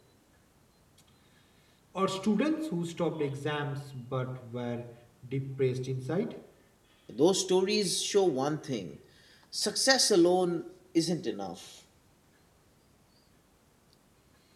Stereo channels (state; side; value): identical; both; correlation 1.00